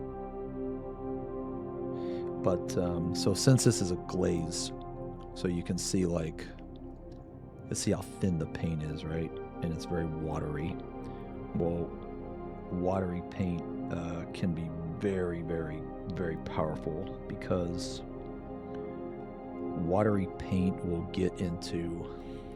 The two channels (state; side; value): identical; both; correlation 1.00